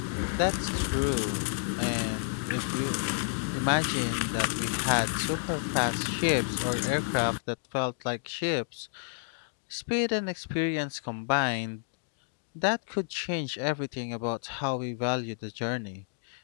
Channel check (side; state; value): right; silent; digital silence